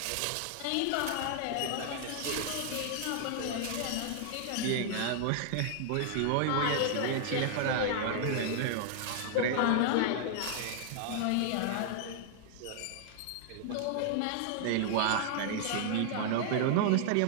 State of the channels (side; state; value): both; different; correlation 0.00